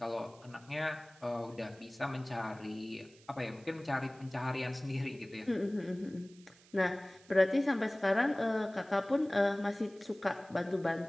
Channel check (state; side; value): noise; right; hiss, 26 dB below the sound